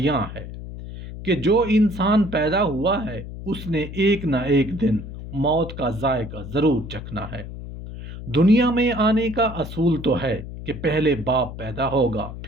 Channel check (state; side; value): noise; left; hum, 10 dB below the sound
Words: है कि जो इंसान पैदा हुआ है उसने एक ना एक दिन मौत का जायका ज़रूर चखना है। दुनिया में आने का असूल तो है कि पहले बाप पैदा होगा